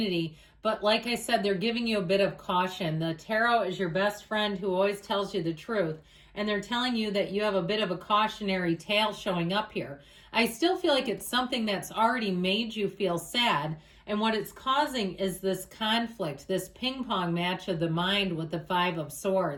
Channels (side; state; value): both; identical; correlation 1.00